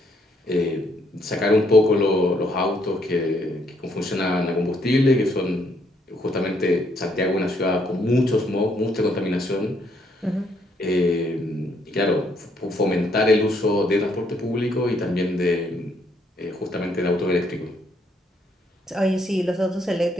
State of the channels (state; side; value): normal; both; correlation 0.71